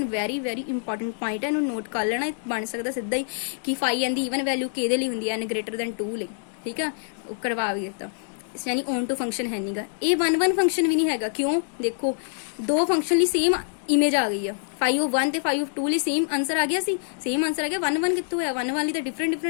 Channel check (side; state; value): right; silent; digital silence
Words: very very important point है इन्होंने नोट कर लेना बन सकता सीधा ही कि फाई एन की ईवन वैल्यू कि होंगी एन ग्रेटर दैन 2 ले ठीक है करवा भी दिता यानी ऑन टू फंक्शन है नहीं ये 1 1 फंक्शन भी नहीं है क्यों देखो दो फंक्शन ली सेम इमेज आ गई है फाई ऑफ 1 ते फाई ऑफ 2 ली सेम आंसर आ गया सी सेम आंसर आ गया 1 1 कितों है 1 वाली तो